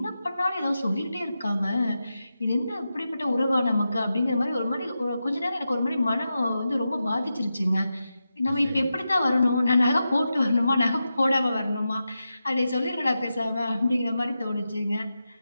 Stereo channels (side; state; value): both; inverted; correlation -0.90